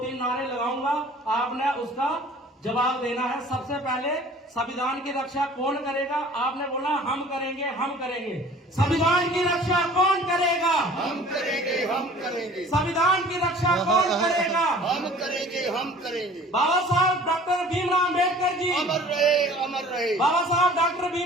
नारे लगाऊंगा, आपने उसका जवाब देना है। सबसे पहले संविधान की रक्षा कौन करेगा? आपने बोला हम करेंगे, हम करेंगे। संविधान की रक्षा कौन करेगा? हम करेंगे, हम करेंगे। संविधान की रक्षा कौन करेगा? हम करेंगे, हम करेंगे। बाबा साहब डॉक्टर भीमराव अम्बेडकर जी अमर रहे, अमर रहे। बाबा साहब डॉक्टर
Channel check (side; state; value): both; normal; correlation 0.48